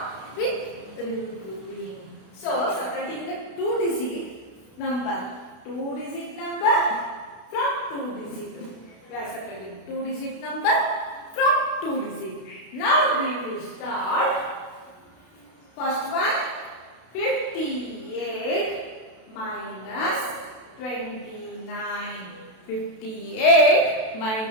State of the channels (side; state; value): right; late; 32 ms